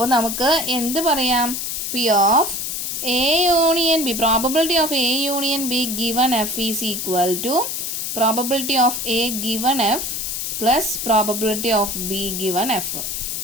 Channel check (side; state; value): left; noise; hiss, 3 dB below the sound